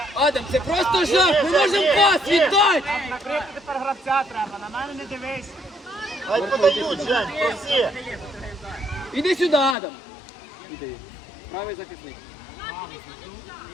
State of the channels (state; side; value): drops out; right; at 9.8 s